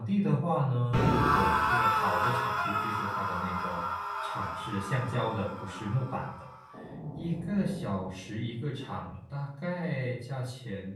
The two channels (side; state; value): both; identical; correlation 1.00